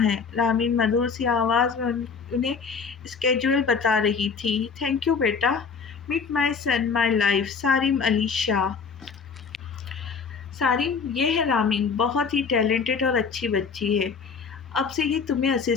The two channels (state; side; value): quieter; right; 5.6 dB